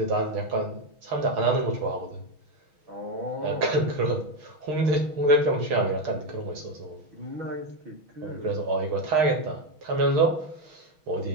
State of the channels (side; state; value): left; late; 6.5 ms